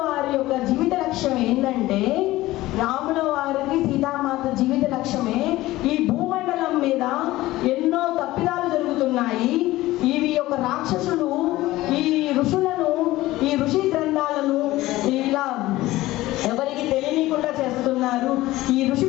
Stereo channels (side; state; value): right; quieter; 17.3 dB